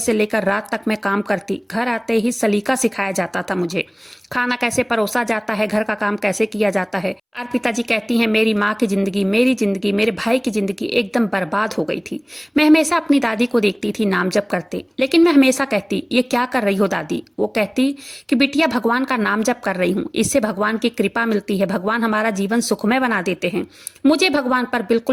लेकर रात तक मैं काम करती। घर आते ही सलीका सिखाया जाता था मुझे, खाना कैसे परोसा जाता है, घर का काम कैसे किया जाता है। अर्पिता जी कहती हैं, मेरी माँ की जिंदगी, मेरी जिंदगी, मेरे भाई की जिंदगी एकदम बर्बाद हो गई थी। मैं हमेशा अपनी दादी को देखती थी नाम जप करते, लेकिन मैं हमेशा कहती, ये क्या कर रही हो दादी? वो कहती कि बिटिया भगवान का नाम जप कर रही हूँ, इससे भगवान की कृपा मिलती है, भगवान हमारा जीवन सुखमय बना देते हैं। मुझे भगवान पर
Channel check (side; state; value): both; identical; correlation 1.00